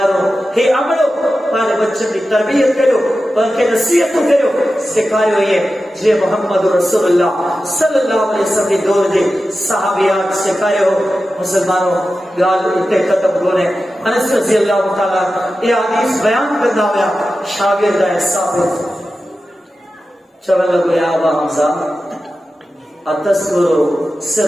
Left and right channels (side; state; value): both; normal; correlation 0.93